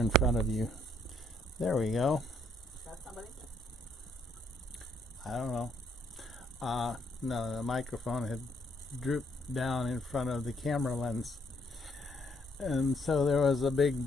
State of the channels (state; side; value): normal; both; correlation 0.70